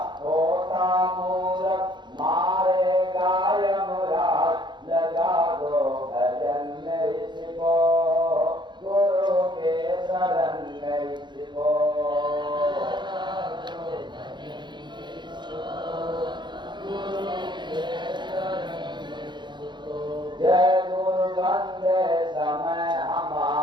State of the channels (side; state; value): left; late; 0.22 ms